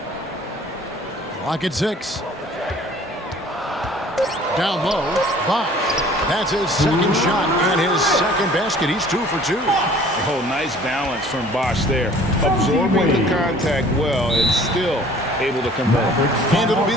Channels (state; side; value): normal; both; correlation 0.51